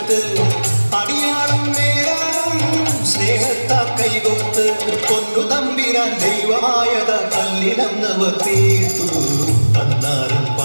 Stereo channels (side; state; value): both; inverted; correlation -1.00